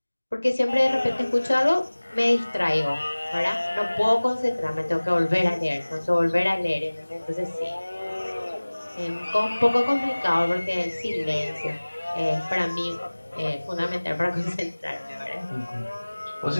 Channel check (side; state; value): both; inverted; correlation -1.00